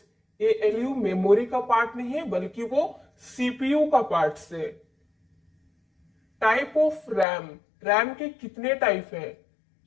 ALU मेमोरी का पार्ट नहीं है बल्कि वो CPU का पार्ट से। टाइप ऑफ रैम, रैम के कितने टाइप है?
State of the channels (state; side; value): drops out; right; at 7.2 s